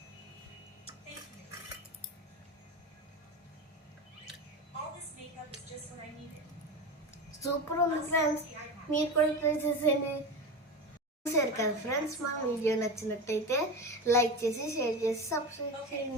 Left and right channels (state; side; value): normal; both; correlation 0.24